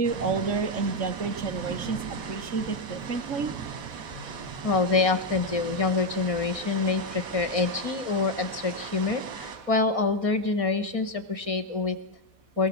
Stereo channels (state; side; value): late; left; 4.1 ms